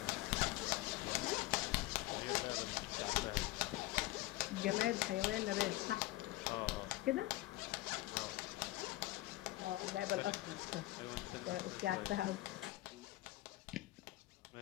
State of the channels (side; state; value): right; quieter; 17.9 dB